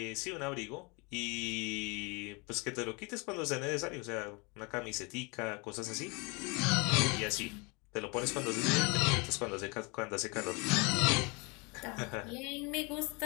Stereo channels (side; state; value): right; quieter; 29.5 dB